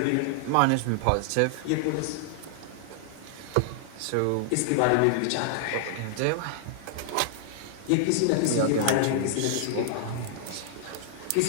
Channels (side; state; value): both; different; correlation -0.01